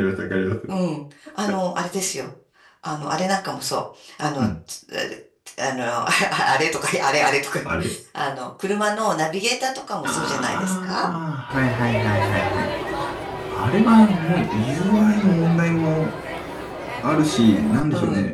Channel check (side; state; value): both; identical; correlation 1.00